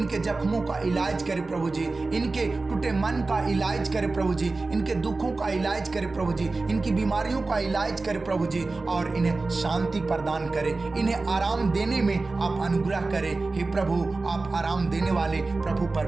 जख्मों का इलाज करे प्रभु जी, इनके टूटे मन का इलाज करे प्रभु जी, इनके दुखों का इलाज करे प्रभु जी, इनकी बीमारियों का इलाज करे प्रभु जी, और इन्हें शांति प्रदान करे, इन्हें आराम देने में आप अनुग्रह करें। हे प्रभु, आप आराम देने वाले प्रभु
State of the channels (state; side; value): quieter; left; 3.5 dB